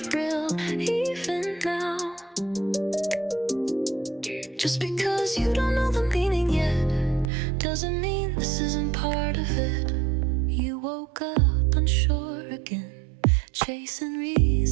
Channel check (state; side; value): drops out; left; at 7.3 s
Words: real, even now. Just because you don't know the meaning yet, doesn't mean this isn't part of it. You woke up unsure again, chasing